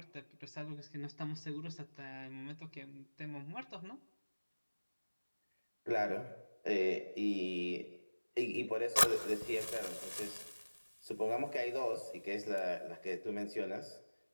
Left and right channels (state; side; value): inverted; both; correlation -1.00